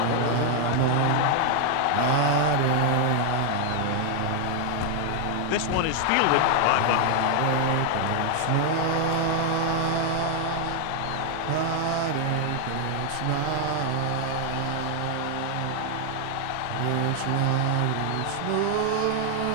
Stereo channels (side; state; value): both; different; correlation 0.00